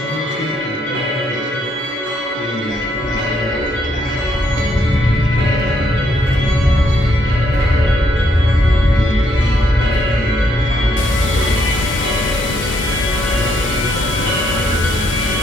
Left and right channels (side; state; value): both; normal; correlation 0.73